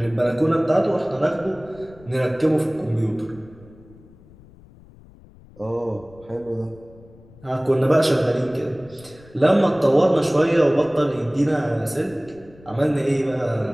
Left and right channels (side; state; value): left; noise; rumble, 24 dB below the sound